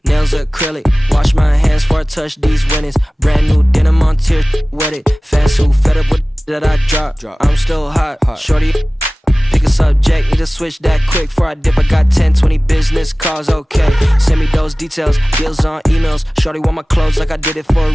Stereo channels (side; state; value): both; normal; correlation 0.98